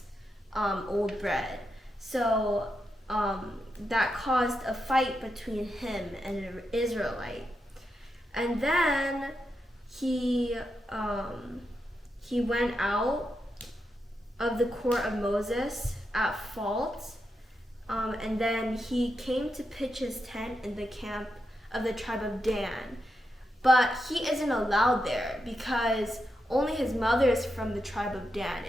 old bread. So that caused a fight between him and an Israelite. And then he went out of the court of Moses at fault, and then he came to pitch his tent in the camp of the tribe of Dan. But he isn't allowed there because only his mother is from the tribe of Dan,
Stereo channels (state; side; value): normal; both; correlation 0.85